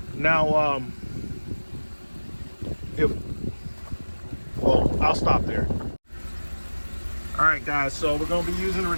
Now, I'll stop there. All right, guys. So we're going to be using the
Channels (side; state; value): both; inverted; correlation -1.00